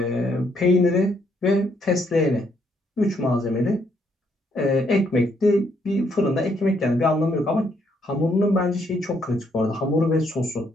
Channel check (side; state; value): both; normal; correlation 0.72